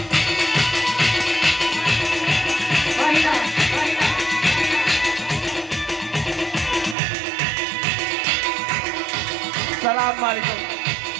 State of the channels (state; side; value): drops out; left; at 7.0 s